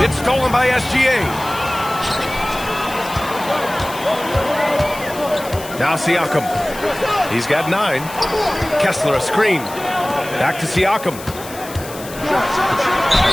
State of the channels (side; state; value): left; noise; hiss, 15 dB below the sound